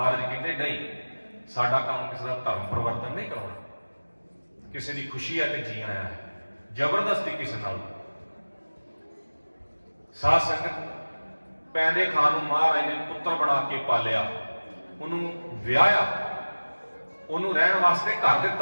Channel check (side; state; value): both; inverted; correlation -1.00